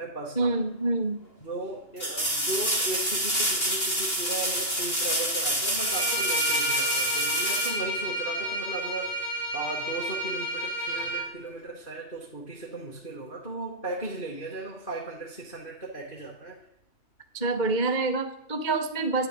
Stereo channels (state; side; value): late; right; 2.8 ms